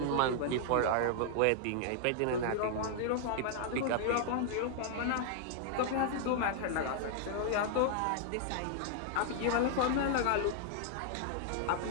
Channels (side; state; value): both; different; correlation 0.00